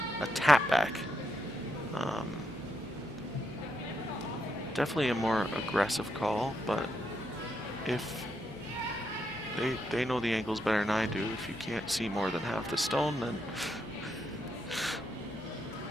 tap back. Definitely a more aggressive call, but if they know the angles better than I do. If you can't see more than half the stone, then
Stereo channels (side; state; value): both; normal; correlation 0.81